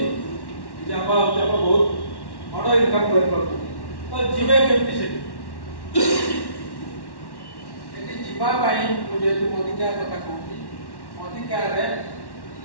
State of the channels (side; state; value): right; late; 1.1 ms